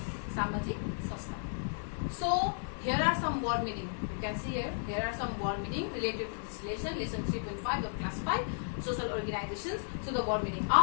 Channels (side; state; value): right; silent; digital silence